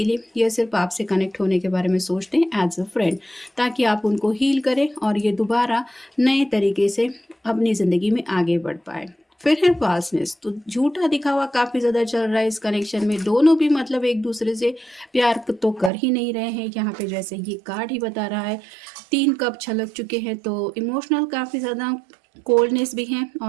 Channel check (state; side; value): drops out; left; at 15.9 s